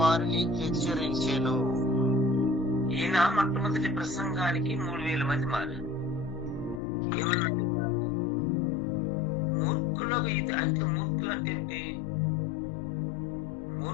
హెచ్చరించెను. ఈయన మొట్టమొదటి ప్రసంగానికి 3000 మంది మారారు. ఏమన్నాడు? మూర్ఖులకు ఇది అంటే, మూర్ఖులు అంటే ఏంటి?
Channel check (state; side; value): drops out; right; at 6.8 s